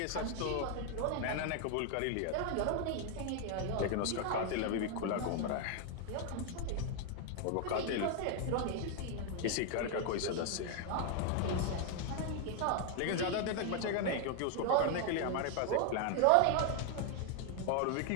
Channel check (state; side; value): different; both; correlation 0.01